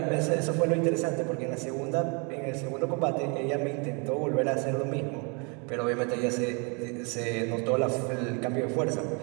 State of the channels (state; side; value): quieter; left; 33.8 dB